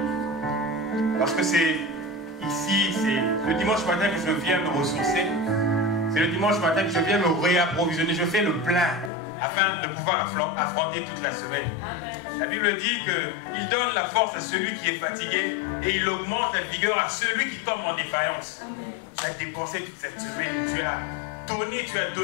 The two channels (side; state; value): right; drops out; at 9.1 s